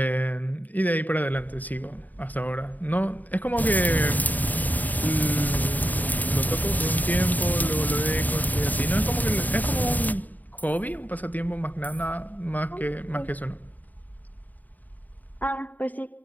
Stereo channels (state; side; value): late; right; 0.082 ms